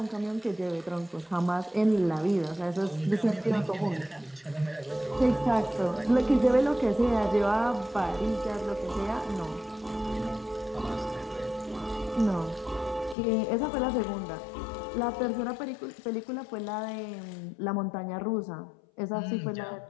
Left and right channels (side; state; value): right; drops out; at 13.2 s